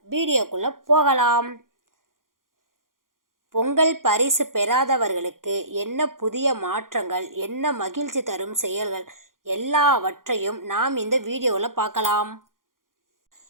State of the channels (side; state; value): left; late; 0.90 ms